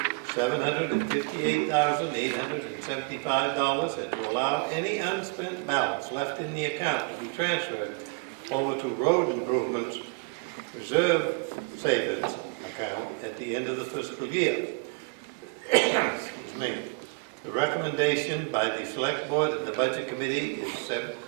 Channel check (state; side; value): quieter; left; 31.2 dB